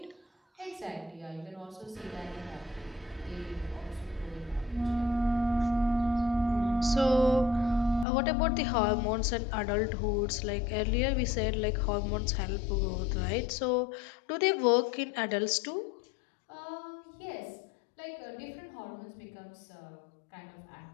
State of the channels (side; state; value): right; drops out; at 8.1 s